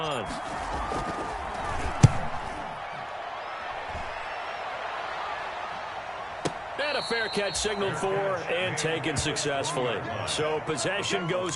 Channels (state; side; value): identical; both; correlation 1.00